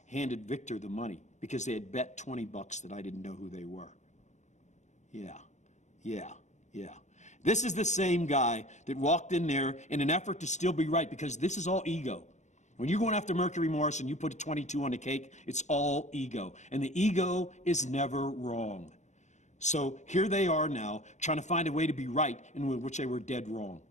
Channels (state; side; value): late; right; 0.34 ms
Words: handed Victor the money because they had bet $20 that I didn't know who they were. Yeah. This is the same guy that walked in there in an effort to still be right, because this is all ego. When you're going after Mercury Morris and you put a 22 on the cake, it's all ego. And the ego is never wrong. So here they are now trying to find a way to be right in which they were dead wrong.